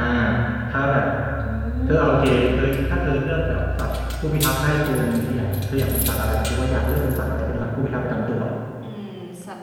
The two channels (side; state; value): both; identical; correlation 1.00